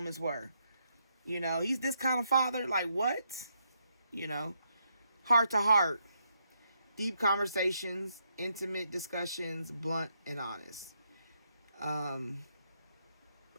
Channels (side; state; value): both; inverted; correlation -0.77